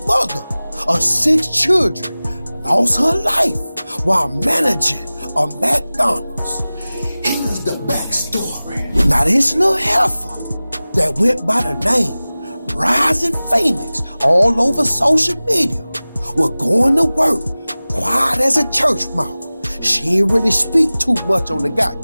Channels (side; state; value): both; inverted; correlation -0.98